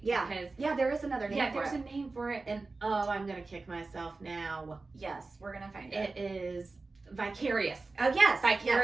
Yeah. Because, there is another name for it. Yeah, there's a name for it, and I'm going to kick myself now. Yes, we're going to find it. It is vicarious. Oh, yes.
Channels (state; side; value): quieter; left; 3.7 dB